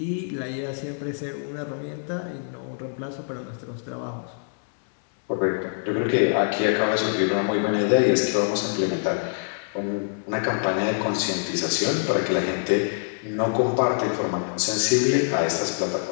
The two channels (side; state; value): right; silent; 62 dB below the other